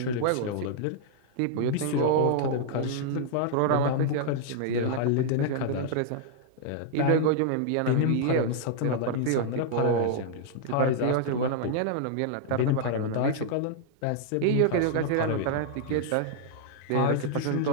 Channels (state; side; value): different; both; correlation -0.01